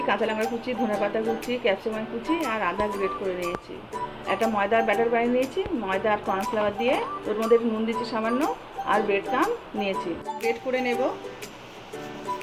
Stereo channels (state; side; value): identical; both; correlation 1.00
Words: কাঁচা লঙ্কা কুচি, ধনেপাতা কুচি, ক্যাপসিকাম কুচি আর আদা গ্রেট করে নিয়েছি। একটা ময়দার ব্যাটার বানিয়ে নিয়েছি, ময়দা আর কর্নফ্লাওয়ার দিয়ে। ওর মধ্যে নুন দিচ্ছি সামান্য, আর ব্রেড ক্রাম্ব নিয়েছি, গ্রেট করে নেব।